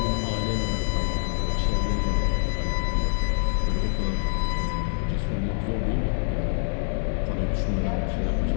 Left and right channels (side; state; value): right; silent; 55 dB below the other